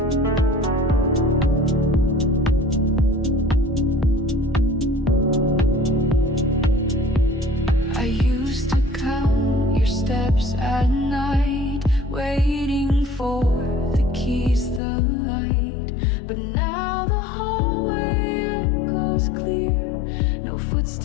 I used to count your steps at night, waiting for the keys, the light. But now the hallway echoes clear, no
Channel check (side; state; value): right; drops out; at 14.8 s